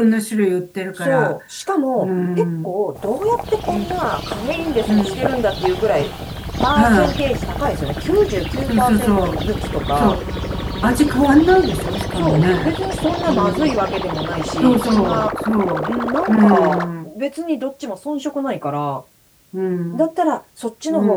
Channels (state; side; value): identical; both; correlation 1.00